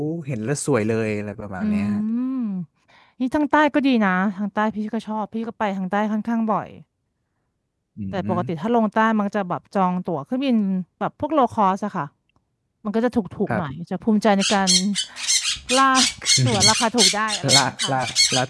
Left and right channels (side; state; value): both; identical; correlation 1.00